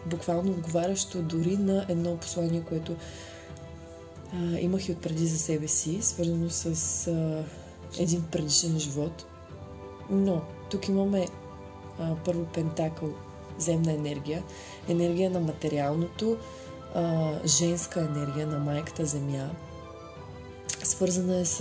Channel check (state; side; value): identical; both; correlation 1.00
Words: буквално отговарящо дори на едно послание, което имах и отпреди за себе си, свързано с един предишен живот. Но тук имаме първо пентакъл, земна енергия на материалното, женска енергия на майката земя. Свързана е